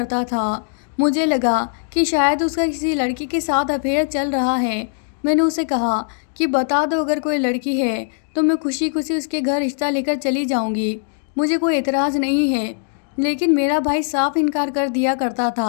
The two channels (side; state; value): right; silent; digital silence